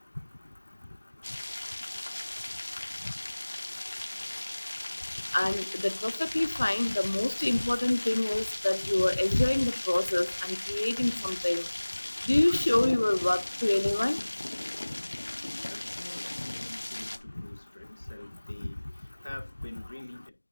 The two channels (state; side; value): inverted; both; correlation -1.00